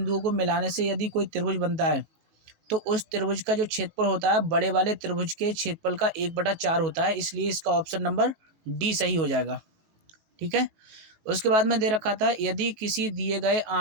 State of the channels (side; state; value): left; late; 18 ms